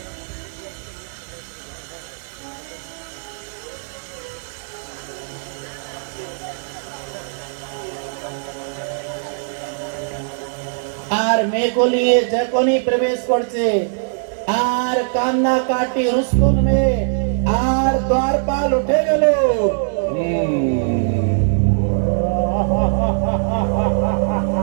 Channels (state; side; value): silent; left; digital silence